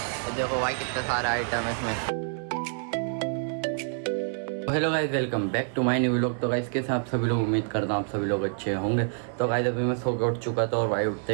देखो भाई कितना सारा आइटम है इसमें। Hello guys, welcome back to my new vlog. तो गाइस कैसे आप सभी लोग, उम्मीद करता हूँ आप सभी लोग अच्छे होंगे। तो गाइस अभी मैं सो के उठ चुका था और भाई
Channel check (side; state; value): left; silent; 60 dB below the other